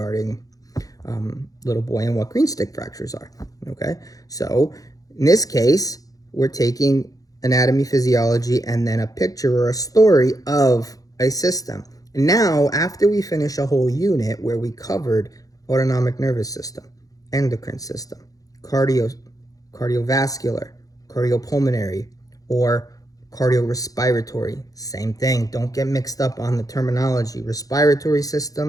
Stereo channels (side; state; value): right; late; 0.17 ms